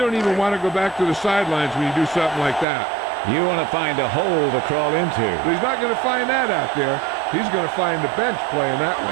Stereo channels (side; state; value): left; drops out; at 2.7 s